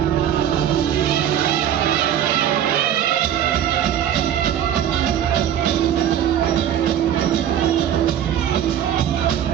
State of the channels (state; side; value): quieter; left; 10.1 dB